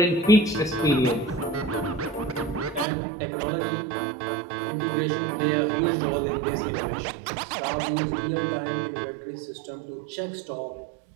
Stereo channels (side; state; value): left; drops out; at 2.9 s